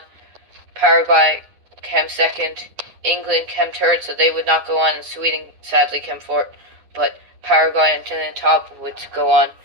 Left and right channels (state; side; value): late; left; 9.7 ms